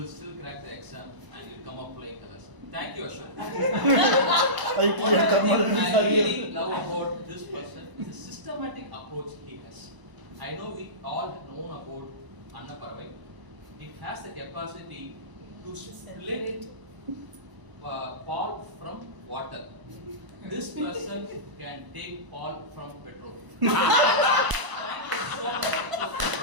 still crack the exam and you'll come up flying colors. Thank you, Ashok. I One of the things thermodynamics I are really here. love about this person is the systematic approach he has. I know we all know about Anna Paravai. It has the capacity to split Paul from water. This person can take Paul from petrol. Thank you so much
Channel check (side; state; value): left; late; 1.0 ms